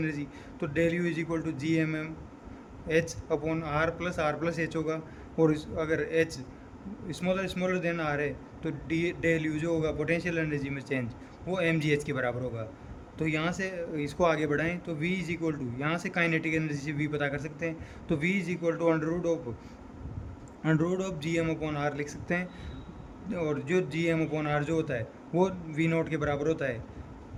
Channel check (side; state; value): both; identical; correlation 1.00